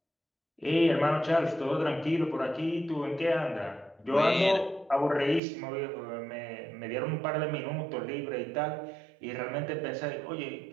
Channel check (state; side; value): drops out; left; at 5.4 s